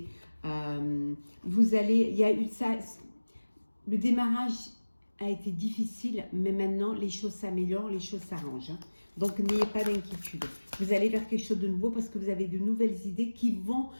Vous allez, il y a eu ça, le démarrage a été difficile, mais maintenant les choses s'améliorent, les choses s'arrangent. Hein. Donc n'ayez pas d'inquiétude. Vous allez vers quelque chose de nouveau parce que vous avez de nouvelles idées qui vont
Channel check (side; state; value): both; inverted; correlation -1.00